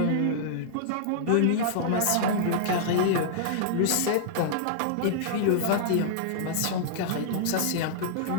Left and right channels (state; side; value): different; both; correlation -0.02